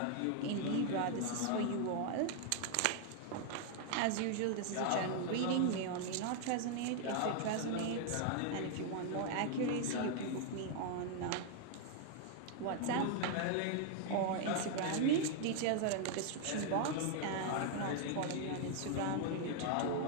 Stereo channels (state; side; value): different; both; correlation 0.00